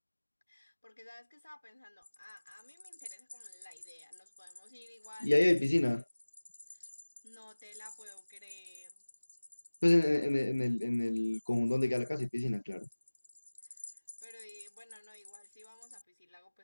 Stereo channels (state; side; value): inverted; both; correlation -1.00